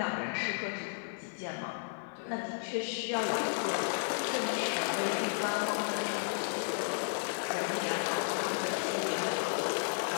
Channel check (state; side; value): silent; right; digital silence